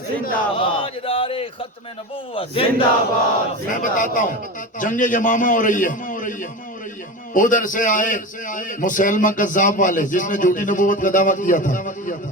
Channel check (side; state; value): both; normal; correlation 0.26